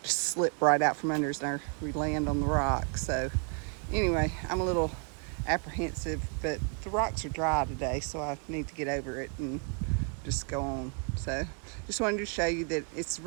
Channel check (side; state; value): left; quieter; 39.0 dB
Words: just slip right out from under us and we land on the rock. So anyway, I'm a little apprehensive, but the rocks are dry today, so I need to get over it and just go on. So just wanted to show you that it's a